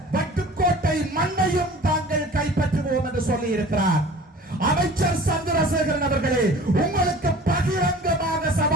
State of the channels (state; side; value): normal; both; correlation 0.44